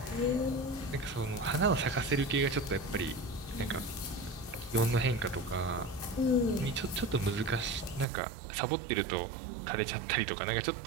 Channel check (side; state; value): left; drops out; at 8.1 s